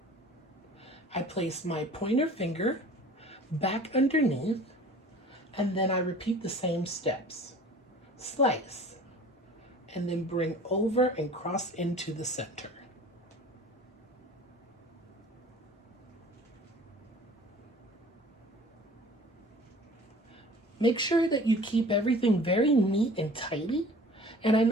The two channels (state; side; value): normal; both; correlation 0.46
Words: I place my pointer finger back underneath and then I repeat the same steps. Slice and then bring over and cross into the center. Make sure that you keep everything very neat and tidy. And I